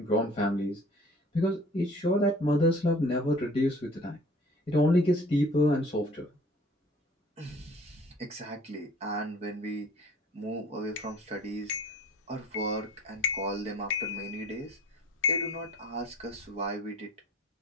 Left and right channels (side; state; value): both; normal; correlation 0.50